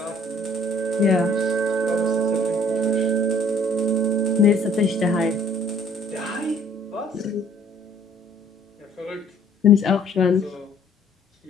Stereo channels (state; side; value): normal; both; correlation 0.57